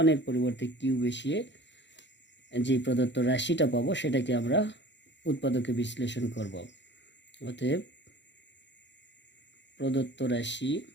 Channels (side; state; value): right; late; 0.52 ms